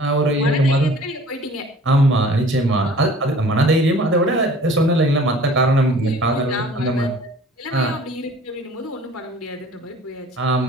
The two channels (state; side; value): normal; both; correlation 0.48